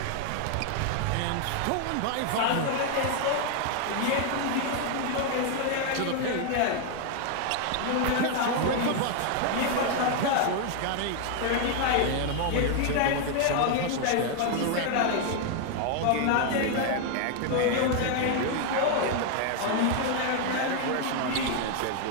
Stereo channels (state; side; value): different; both; correlation 0.00